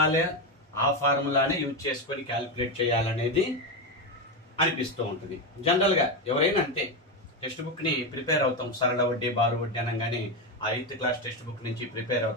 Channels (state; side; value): normal; both; correlation 0.11